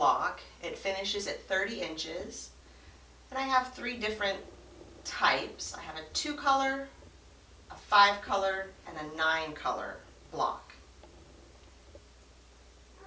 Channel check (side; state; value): both; identical; correlation 1.00